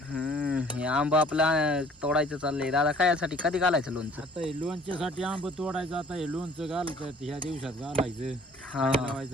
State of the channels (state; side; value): normal; both; correlation 0.54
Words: हे आंब आपला तोडायचं चाललंय दादा. काय यासाठी कधी घालायचं लोणचं. आता हे लोणच्यासाठी आंब तोडायचं. आता हे लोणचं घालतात ह्या दिवसात घालायचं.